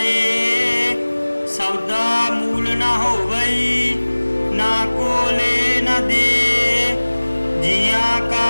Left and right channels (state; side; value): inverted; both; correlation -1.00